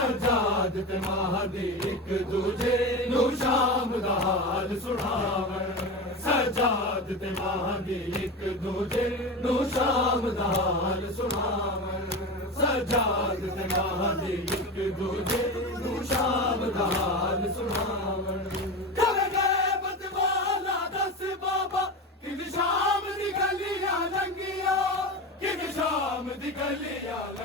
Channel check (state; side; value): normal; both; correlation 0.24